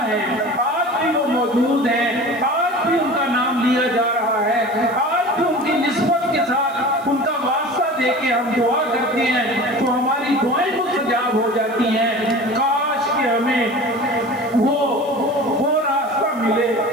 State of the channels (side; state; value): right; noise; hiss, 25 dB below the sound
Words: ہیں، آج بھی وہ موجود ہیں، آج بھی ان کا نام لیا جا رہا ہے، آج بھی ان کی نسبت کے ساتھ ان کا واسطہ دے کے ہم دعا کرتے ہیں تو ہماری دعائیں مستجاب ہو جاتی ہیں. کاش کہ ہمیں وہ راستہ ملے،